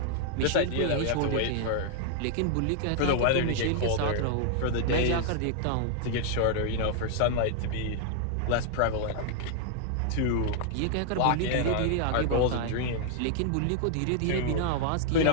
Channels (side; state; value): both; different; correlation 0.00